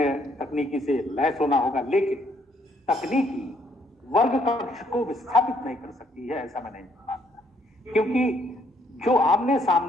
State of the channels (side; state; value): both; normal; correlation 0.69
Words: तकनीकी से लैस होना होगा, लेकिन तकनीकी वर्ग कक्ष को विस्थापित नहीं कर सकती है, ऐसा मैं नहीं मानता। क्योंकि जो आमने